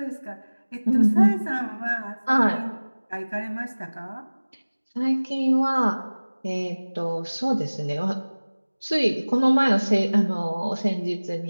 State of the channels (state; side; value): inverted; both; correlation -1.00